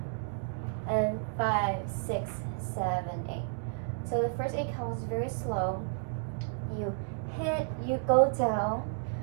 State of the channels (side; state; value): left; silent; digital silence